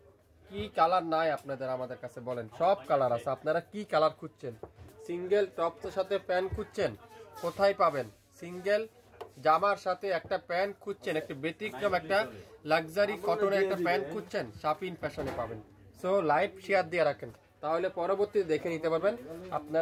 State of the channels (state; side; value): identical; both; correlation 1.00